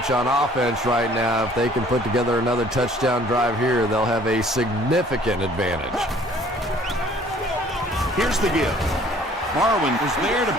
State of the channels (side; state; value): both; normal; correlation 0.56